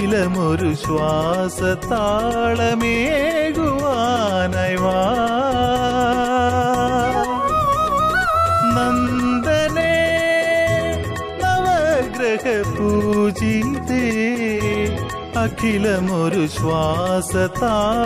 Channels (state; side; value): identical; both; correlation 1.00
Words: ശ്വാസതാളമേകുവാനായി വാ. നന്ദനേ നവഗ്രഹ പൂജിതേ അഖിലമൊരു